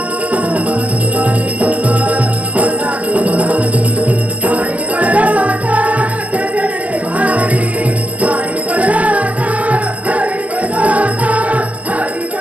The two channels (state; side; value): late; left; 0.074 ms